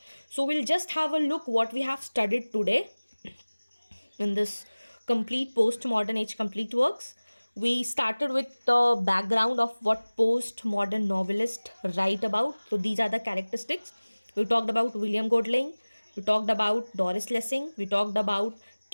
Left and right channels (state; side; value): inverted; both; correlation -1.00